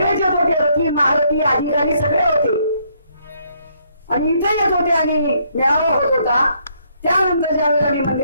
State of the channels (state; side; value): inverted; both; correlation -0.70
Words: येत होते, रथी महारथी अधिकारी सगळे होते आणि इथे येत होते आणि मेळावा होत होता. त्यानंतर ज्या वेळेला मी